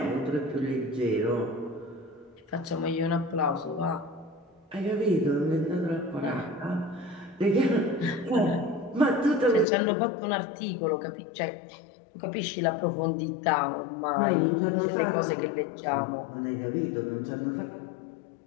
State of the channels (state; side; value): drops out; right; at 9.7 s